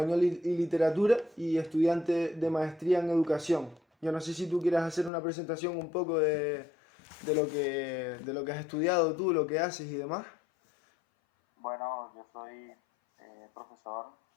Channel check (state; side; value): drops out; right; at 5.1 s